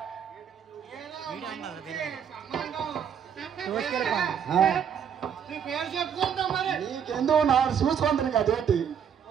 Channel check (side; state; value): left; quieter; 8.0 dB